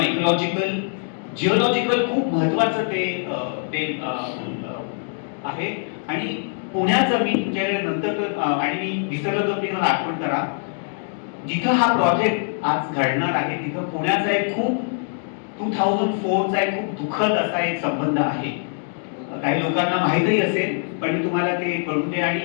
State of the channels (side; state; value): right; silent; 63 dB below the other